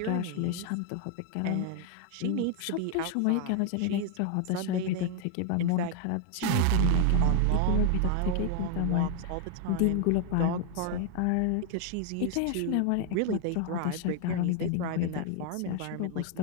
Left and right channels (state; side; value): different; both; correlation 0.01